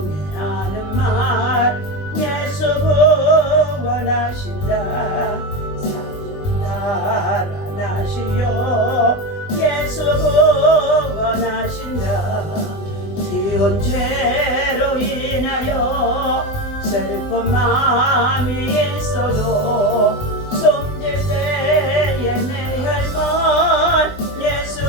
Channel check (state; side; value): late; right; 20 ms